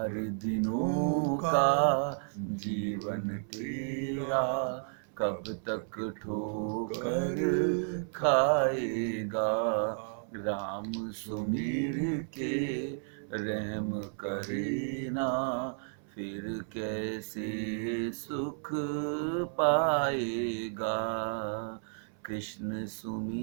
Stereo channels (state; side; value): silent; left; 56 dB below the other